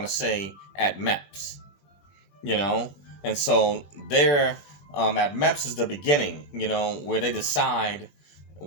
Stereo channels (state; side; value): late; right; 21 ms